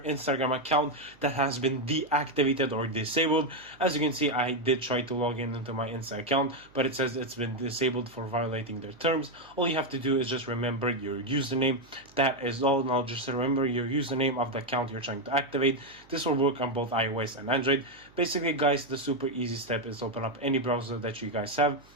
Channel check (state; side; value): noise; right; hum, 27 dB below the sound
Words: account that has been deactivated or disabled. As you can see, I did try to log in into my Insta account, but it says it's been disabled for violating their terms. All you have to do is just remember your username. That is all. Now just remember your username of the account you're trying to activate. This will work on both iOS and Android. Basically guys, the super easy step is open up any browser that you guys have,